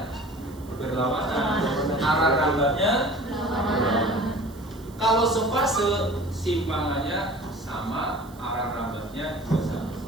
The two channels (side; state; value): right; noise; hiss, 25 dB below the sound